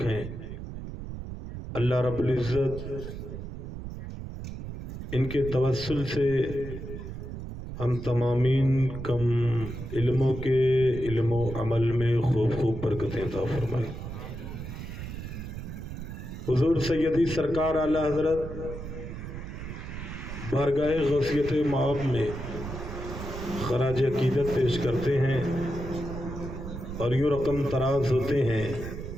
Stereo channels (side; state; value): right; noise; rumble, 8 dB below the sound